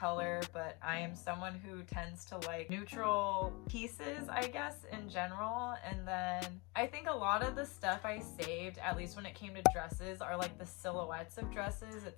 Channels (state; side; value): quieter; right; 27.2 dB